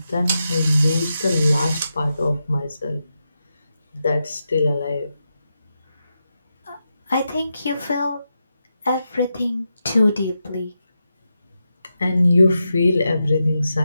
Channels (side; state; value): both; inverted; correlation -0.88